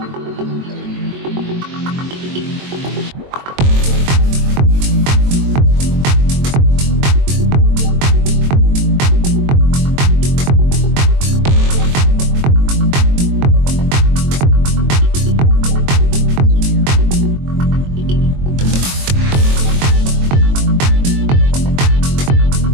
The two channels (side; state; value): left; late; 22 ms